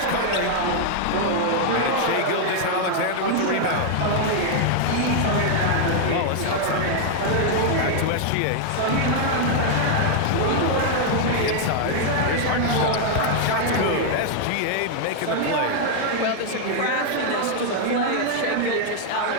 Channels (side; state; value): both; different; correlation 0.00